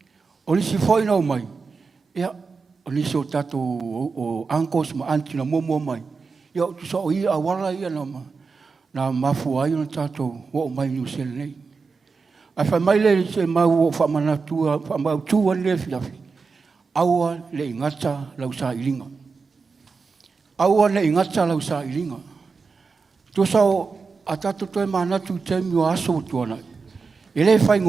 O lisi whoi no mai, ia, o lisi o tatou o ankos ma anti na momo mai. Ia, tu sa o ia a wala ia na mafu ai na tatou o mai ni usele nei. Ai whai mai le se mau o whamanatua, whamau tua le fiafi. Aua le ingata lau sa ilinga. Aua le ingata lau sa ilinga. Tu sao a tatu toi manatu temi o aso tuana. E le whai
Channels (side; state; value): left; quieter; 4.7 dB